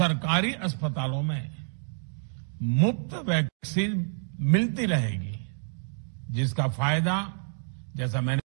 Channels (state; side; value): silent; left; digital silence